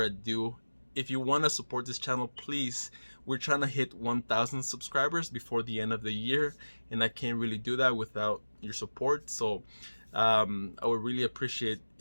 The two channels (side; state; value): both; inverted; correlation -1.00